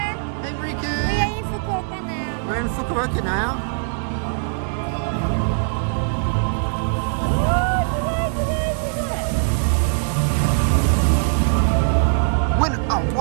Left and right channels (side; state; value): left; silent; digital silence